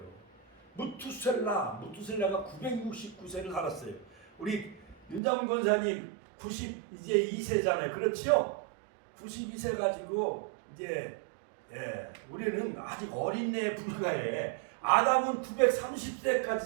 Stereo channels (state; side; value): drops out; left; at 5.2 s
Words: 무투셀라가 969세를 살았어요. 우리 윤장훈 권사님 92세잖아요. 그렇지요? 92세 가지고 이제 우리는 아직 어린애에 불과해. 아담은 930세까지